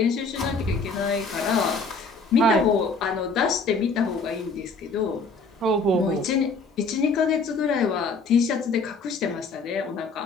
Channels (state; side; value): quieter; right; 3.9 dB